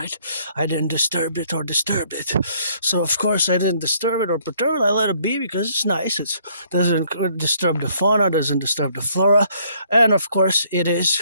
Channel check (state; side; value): inverted; both; correlation -0.65